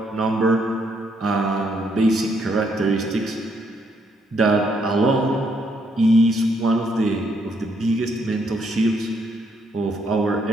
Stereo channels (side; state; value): both; normal; correlation 0.72